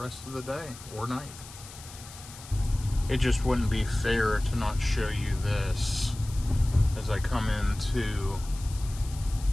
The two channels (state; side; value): noise; left; hiss, 16 dB below the sound